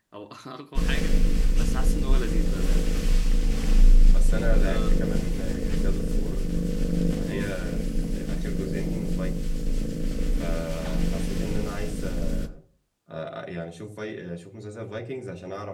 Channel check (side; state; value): both; identical; correlation 1.00